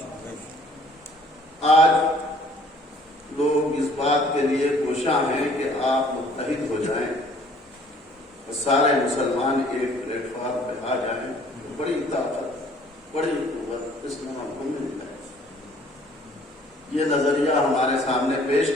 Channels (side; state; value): both; normal; correlation 0.57